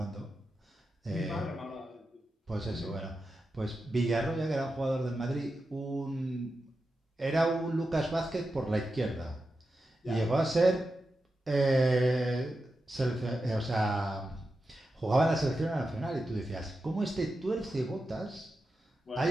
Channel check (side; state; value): both; normal; correlation 0.90